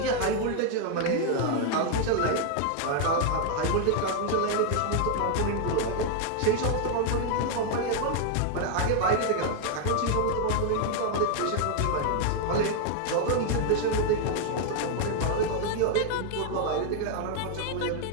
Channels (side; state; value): both; different; correlation 0.00